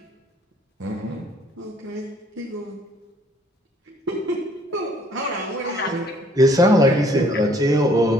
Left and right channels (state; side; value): normal; both; correlation 0.62